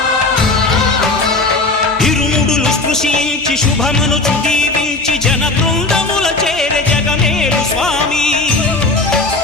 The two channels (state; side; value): quieter; right; 3.2 dB